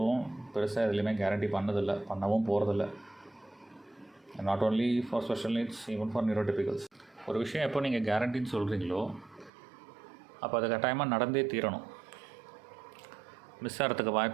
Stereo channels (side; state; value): left; drops out; at 9.5 s